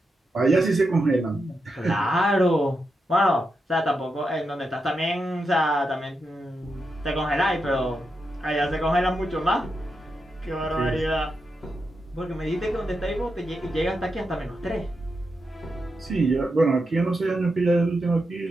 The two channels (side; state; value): both; normal; correlation 0.86